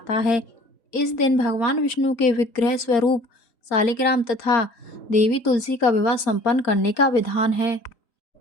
है। इस दिन भगवान विष्णु के विग्रह स्वरूप शालिग्राम तथा देवी तुलसी का विवाह संपन्न करने का विधान है।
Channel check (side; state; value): right; late; 4.3 ms